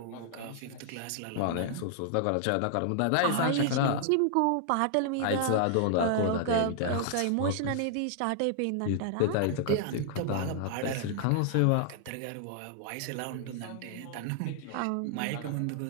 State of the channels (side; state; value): both; different; correlation 0.00